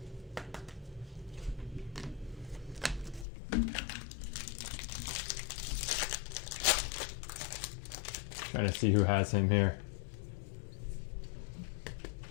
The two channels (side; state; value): right; drops out; at 3.2 s